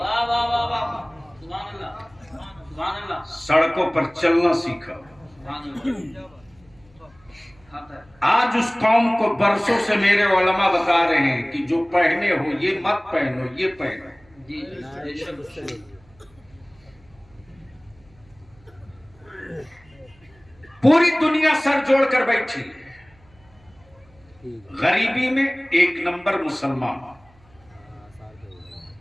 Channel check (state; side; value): noise; right; hum, 29 dB below the sound